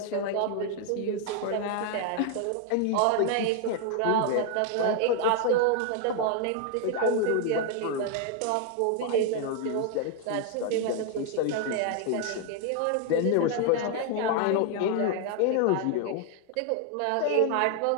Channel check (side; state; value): both; different; correlation 0.00